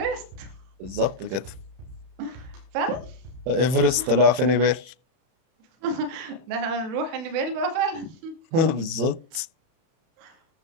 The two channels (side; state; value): left; late; 31 ms